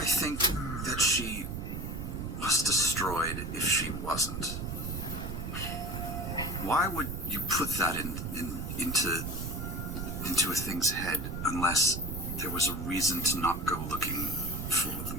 think that she was destroyed if she wasn't? Why would you put that into a thing's head unless there was a reason to not go looking for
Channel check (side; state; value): right; noise; rumble, 5 dB below the sound